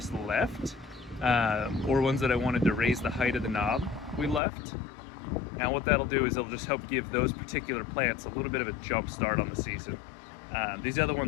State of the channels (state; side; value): drops out; right; at 4.4 s